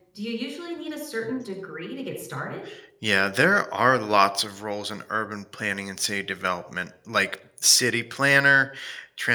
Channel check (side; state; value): both; identical; correlation 1.00